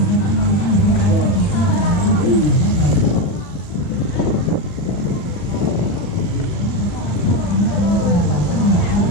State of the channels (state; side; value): late; right; 40 ms